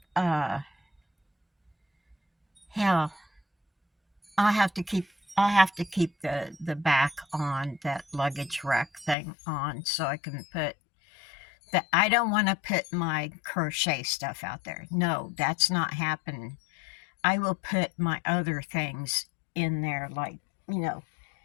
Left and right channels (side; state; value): right; drops out; at 9.2 s